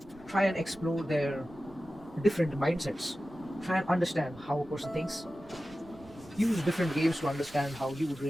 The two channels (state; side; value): noise; right; rumble, 24 dB below the sound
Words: Try and explore their different mindsets. Try and understand how a person thinks. Use different games to understand how you would